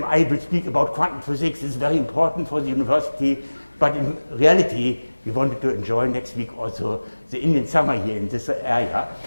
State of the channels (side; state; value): both; inverted; correlation -1.00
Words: I will speak about quantum physics. It's very important for the university. But in reality, we wanted to enjoy next week also the Indian summer here in this area.